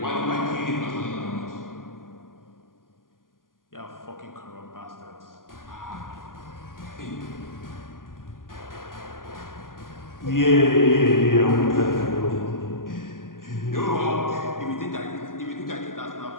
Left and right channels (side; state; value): right; late; 0.90 ms